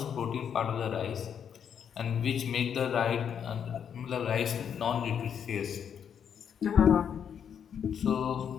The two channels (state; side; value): quieter; right; 8.1 dB